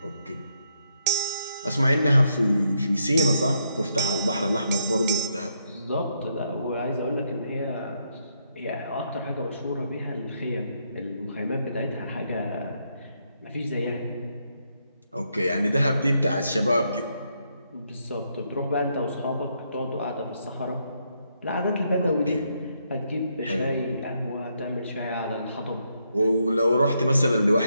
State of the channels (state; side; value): inverted; both; correlation -0.77